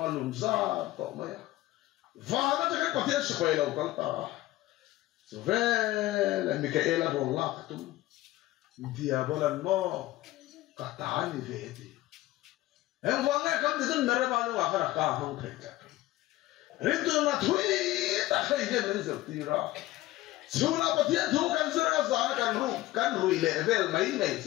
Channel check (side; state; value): right; quieter; 16.8 dB